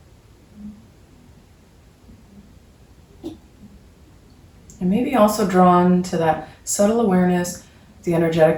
And maybe also drawn to that subtle awareness, the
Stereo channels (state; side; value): identical; both; correlation 1.00